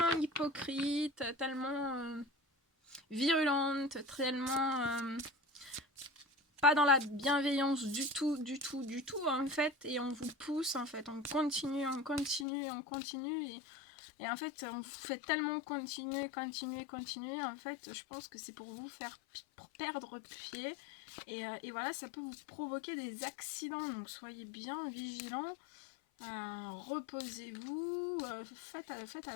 hypocrites, tellement... virulente, tellement pas dans la bienveillance du tout, en fait, et on vous pousse, en fait, on continue, et en fait, on vous fait tellement continuer, en fait, je pense que c'est pour vous faire perdre pied, et voilà, ça peut vous provoquer des accidents, donc soyez bien vigilants. Reposez-vous, faites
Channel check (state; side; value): drops out; right; at 12.5 s